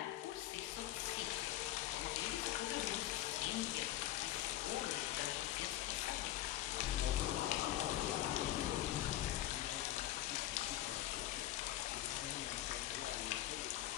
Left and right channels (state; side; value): quieter; right; 14.3 dB